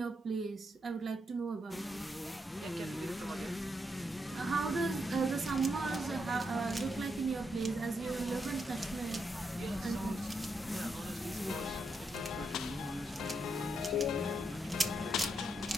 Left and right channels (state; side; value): normal; both; correlation 0.81